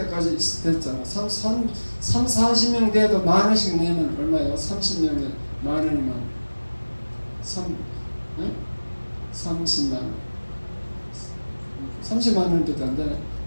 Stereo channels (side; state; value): both; inverted; correlation -1.00